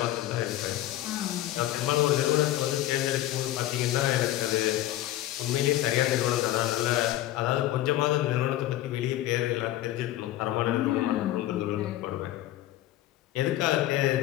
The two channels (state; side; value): quieter; right; 14.5 dB